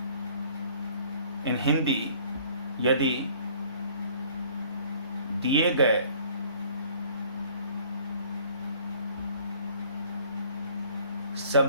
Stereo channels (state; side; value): inverted; both; correlation -0.55